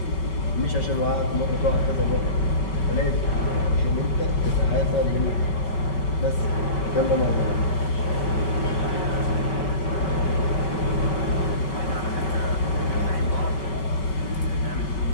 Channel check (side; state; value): right; late; 5.3 ms